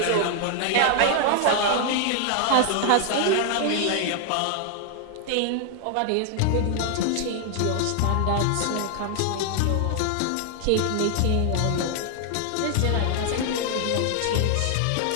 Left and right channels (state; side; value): different; both; correlation 0.00